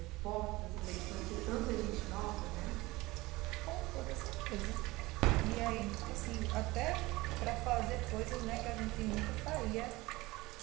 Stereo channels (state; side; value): quieter; left; 20.7 dB